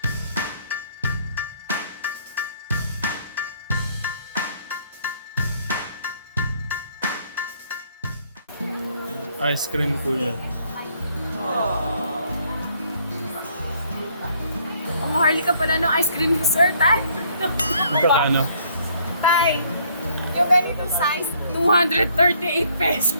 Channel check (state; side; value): inverted; both; correlation -0.64